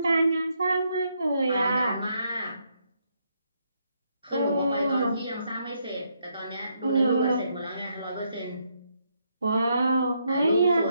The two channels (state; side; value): inverted; both; correlation -0.77